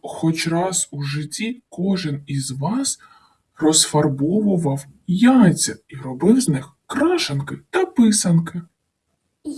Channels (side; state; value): both; identical; correlation 1.00